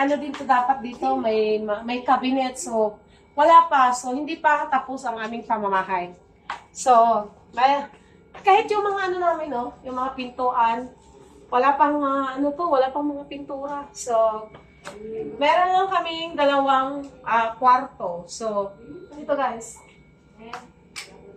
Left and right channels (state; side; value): identical; both; correlation 1.00